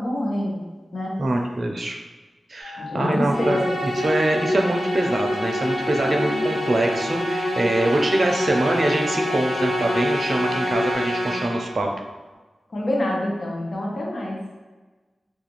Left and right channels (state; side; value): normal; both; correlation 0.93